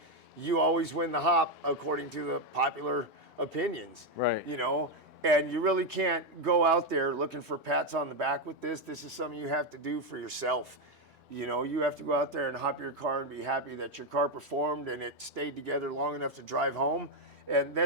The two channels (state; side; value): normal; both; correlation 0.06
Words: you always win the hop according to the popular opinions. Right. And you really can't go out there looking for pats on the back with this. This is something you have to do for yourself. You have to go out there and hop your car and be happy that your car performed and it stayed together long enough to drive home. And